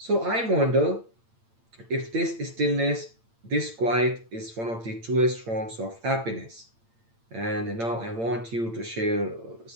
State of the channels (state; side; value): late; left; 8.8 ms